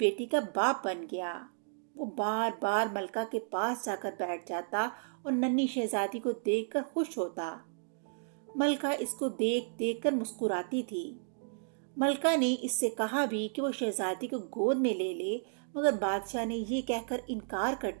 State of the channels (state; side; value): silent; left; digital silence